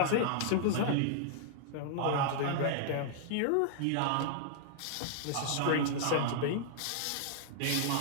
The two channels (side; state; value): both; different; correlation -0.01